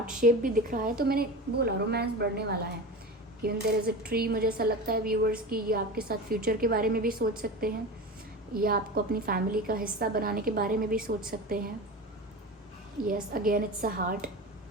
शेप भी दिख रहा है, तो मैंने बोला रोमांस बढ़ने वाला है। Even there is a tree, मुझे ऐसा लगता है व्यूअर्स कि ये आपके साथ फ्यूचर के बारे में भी सोच सकते हैं, या आपको अपनी फैमिली का हिस्सा बनाने के बारे में भी सोच सकते हैं। Yes again it's a heart,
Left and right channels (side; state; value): both; normal; correlation 0.29